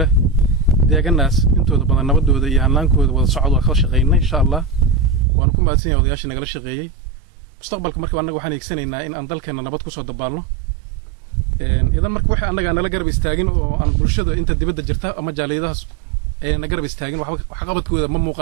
deeganaas intooda badan nabadooda iyo hanaankooda wada socod waa ka shaqeynaa insha Allah waan ku maadsan yahay odayaasha nagala shaqeeyay mustaqbalka marka anaga waxaan eegsanaynaa in aan dalkeena nabad ku soo dabaalno idan marka waxa anaga nala garab istaagin oo aan bulshada inta dibadda jirta ama jaaliyadahaas ay na garab istaagin wax qabadkooda ma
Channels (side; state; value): left; drops out; at 5.2 s